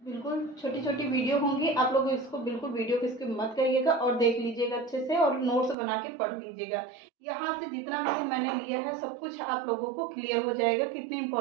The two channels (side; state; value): left; drops out; at 5.8 s